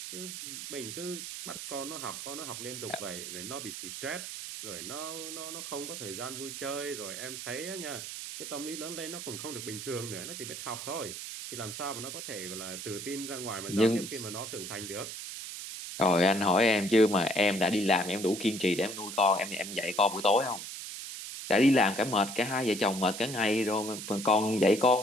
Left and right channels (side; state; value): right; noise; hiss, 8 dB below the sound